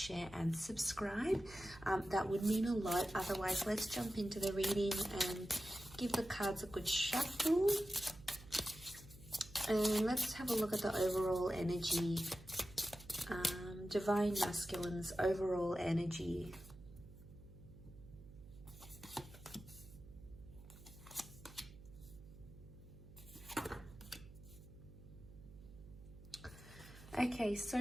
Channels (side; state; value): right; noise; hum, 18 dB below the sound